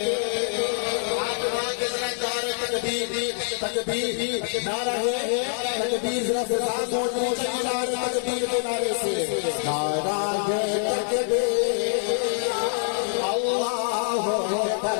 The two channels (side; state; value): right; silent; digital silence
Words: تکبیر نعرہ ہے تکبیر ذرا سے ساتھ ہونے چاہیے نعرہ تکبیر کے نعرے سے نعرہ ہے تکبیر اللہ